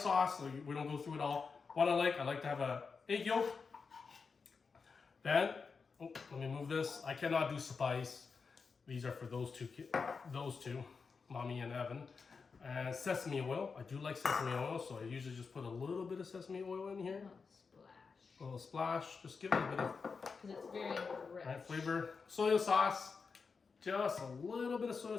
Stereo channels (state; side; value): quieter; right; 5.1 dB